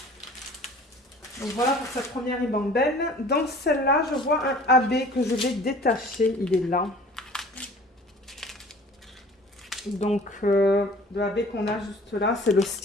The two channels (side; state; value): both; normal; correlation 0.48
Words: Donc voilà pour cette première ribambelle. Dans celle-là, je vois un AB que je vais détacher. Il est là. Donc, le AB qu'on a juste là, c'est le